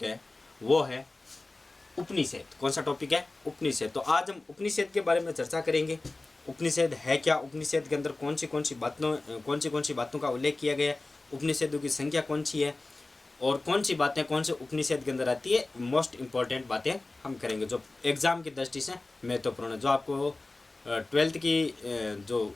है, वो है उपनिषद। कौन सा टॉपिक है? उपनिषद। तो आज हम उपनिषद के बारे में चर्चा करेंगे। उपनिषद है क्या, उपनिषद के अंदर कौन सी बातों का उल्लेख किया गया है, उपनिषदों की संख्या कौन सी है, और कौन सी बातें कौन से उपनिषद के अंदर आती है, मोस्ट इंपॉर्टेंट बातें हम करेंगे जो एग्जाम की दृष्टि से महत्वपूर्ण है, जो आपको 12th की जो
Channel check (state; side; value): quieter; right; 3.1 dB